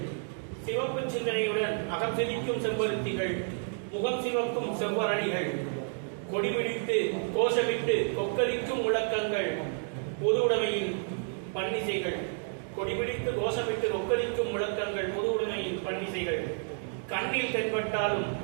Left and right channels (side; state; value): left; silent; 57 dB below the other